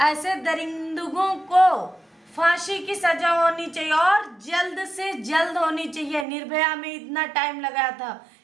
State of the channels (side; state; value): left; drops out; at 6.2 s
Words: दरिंदों को फांसी की सजा होनी चाहिए और जल्द से जल्द होनी चाहिए। निर्भया में इतना टाइम लगा था,